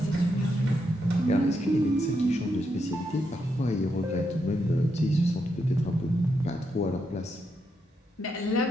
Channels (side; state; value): both; normal; correlation 0.81